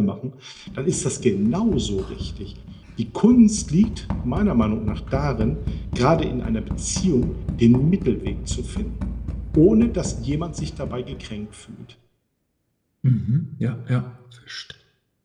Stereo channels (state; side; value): identical; both; correlation 1.00